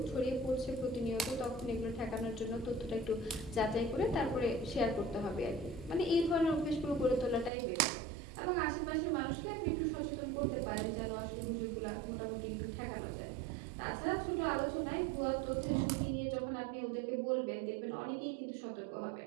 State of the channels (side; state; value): left; drops out; at 7.5 s